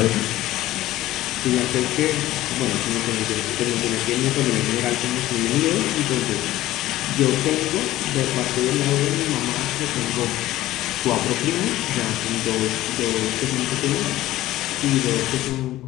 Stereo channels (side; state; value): right; quieter; 15.5 dB